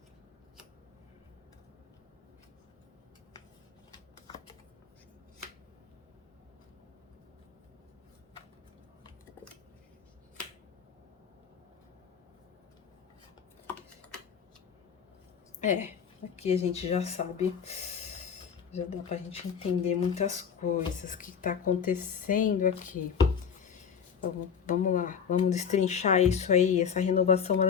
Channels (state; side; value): quieter; right; 7.1 dB